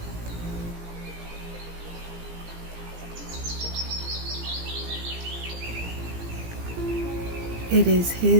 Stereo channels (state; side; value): late; left; 17 ms